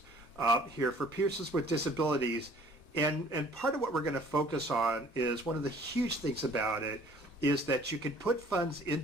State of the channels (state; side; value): normal; both; correlation 0.55